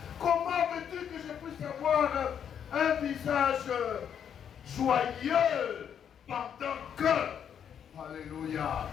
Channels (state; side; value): quieter; right; 8.4 dB